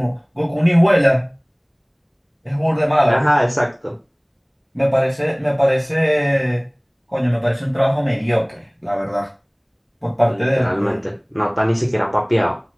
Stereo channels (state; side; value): identical; both; correlation 1.00